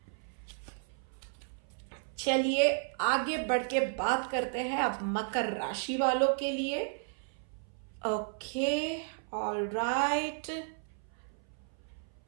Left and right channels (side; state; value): left; silent; 55 dB below the other